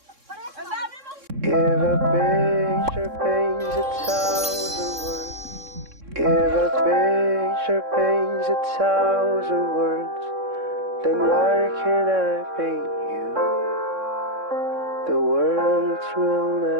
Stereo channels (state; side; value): late; left; 3.6 ms